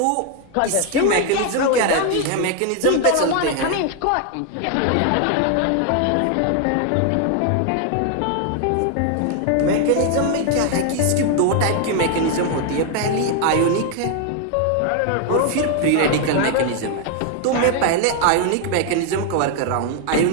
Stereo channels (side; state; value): both; different; correlation 0.00